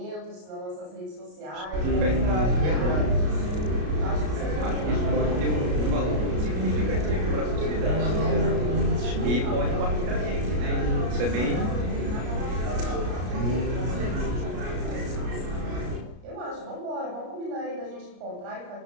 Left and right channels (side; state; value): left; late; 33 ms